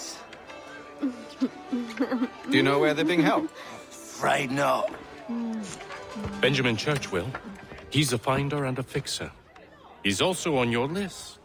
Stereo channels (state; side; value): identical; both; correlation 1.00